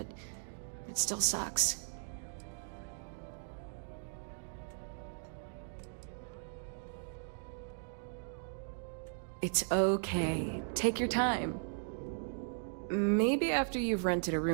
it still sucks. It's okay. Take your time. Maybe after you've rented a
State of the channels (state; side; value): silent; left; digital silence